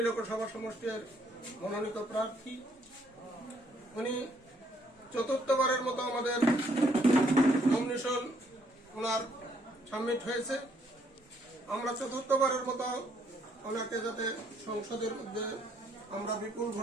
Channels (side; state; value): both; normal; correlation 0.69